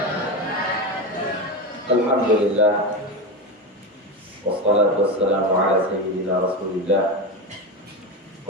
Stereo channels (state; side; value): normal; both; correlation 0.17